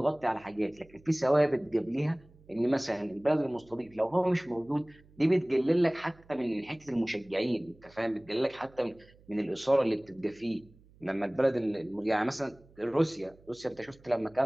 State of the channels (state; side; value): noise; right; hum, 27 dB below the sound